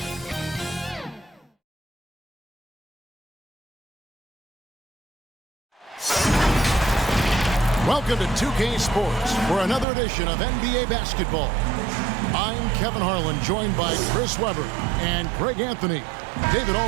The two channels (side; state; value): left; drops out; at 9.9 s